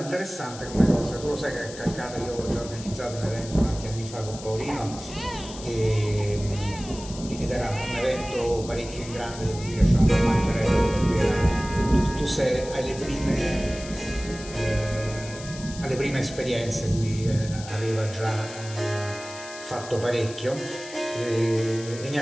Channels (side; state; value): left; noise; hiss, 14 dB below the sound